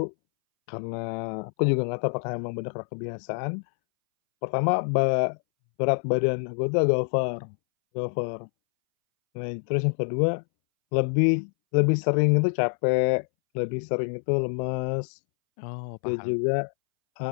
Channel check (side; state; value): right; silent; 61 dB below the other